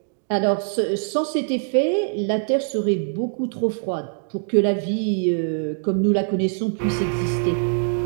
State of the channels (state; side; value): silent; left; digital silence